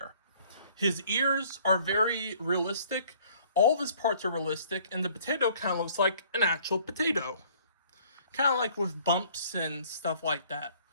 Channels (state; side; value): inverted; both; correlation -0.57